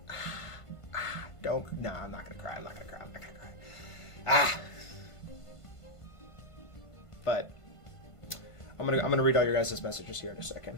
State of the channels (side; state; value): right; late; 1.5 ms